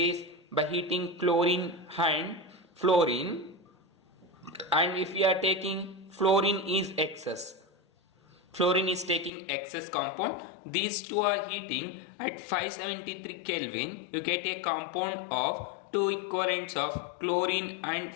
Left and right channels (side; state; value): right; drops out; at 9.3 s